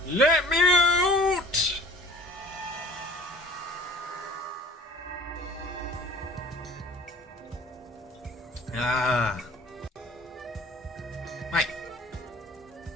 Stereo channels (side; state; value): both; normal; correlation 0.47